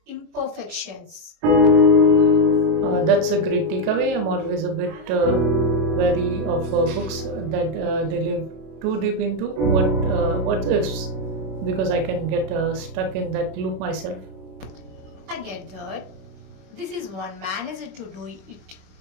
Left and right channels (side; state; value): left; late; 27 ms